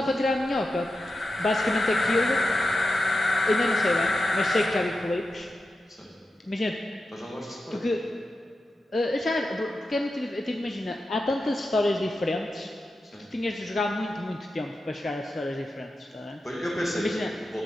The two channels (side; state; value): both; normal; correlation 0.91